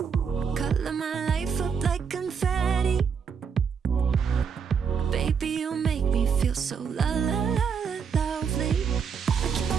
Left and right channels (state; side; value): quieter; left; 6.5 dB